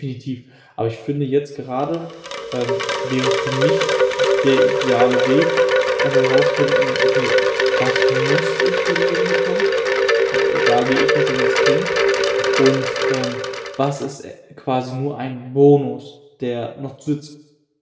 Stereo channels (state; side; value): identical; both; correlation 1.00